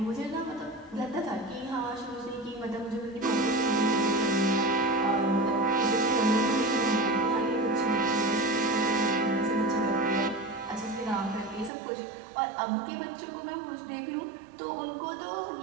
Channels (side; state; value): left; drops out; at 11.7 s